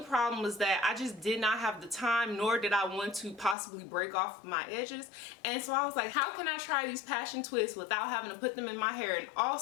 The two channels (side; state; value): right; drops out; at 3.6 s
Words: was that I just did not have the time, nor did I want to possibly break off my edges. And so I was like, how can I try these passion twists without having to put them in my hair? And